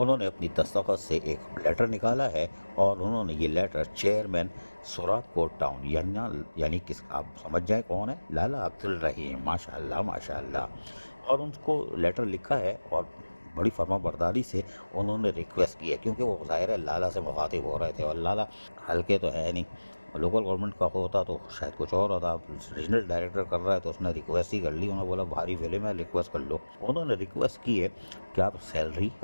अपनी दस्तखत से एक लेटर निकाला है और उन्होंने ये लेटर चेयरमैन सोराबकोट टाउन यानी किस आप समझ जाए कौन है, लाला अब्दुल रहीम, माशाअल्लाह माशाअल्लाह, और उनको लेटर लिखा है और बड़ी फर्माबरदारी से उन्होंने रिक्वेस्ट की है, क्योंकि वो ज़ाहिर है लाला से मुखातिब हो रहे थे और लाला हल्के तो है नहीं, लोकल गवर्नमेंट का होता तो शायद कुछ और होता। रीजनल डायरेक्टर कर रहा है तो उसने रिक्वेस्ट ही कर ली, उन्होंने बोला भारी फिल्म है रिक्वेस्ट कर लो। उन्होंने रिक्वेस्ट की है कि आप सैलरी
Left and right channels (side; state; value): both; inverted; correlation -1.00